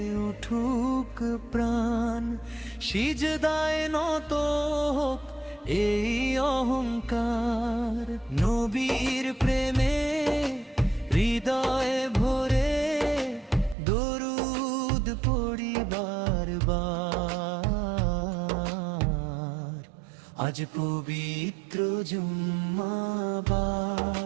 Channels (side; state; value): left; drops out; at 13.8 s